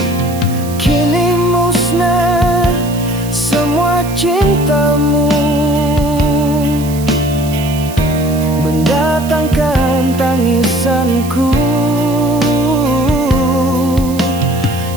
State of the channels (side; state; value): right; noise; hiss, 15 dB below the sound